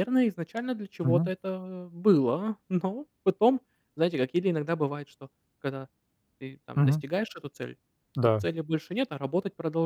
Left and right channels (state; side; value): identical; both; correlation 1.00